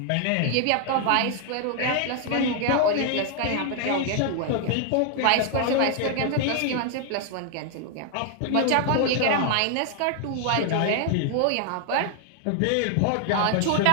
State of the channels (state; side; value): different; both; correlation 0.00